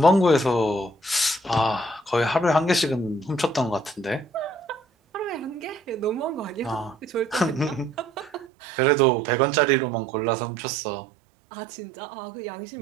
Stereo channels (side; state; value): left; drops out; at 8.5 s